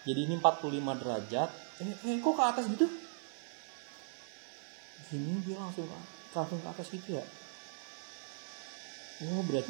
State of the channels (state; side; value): silent; left; 52 dB below the other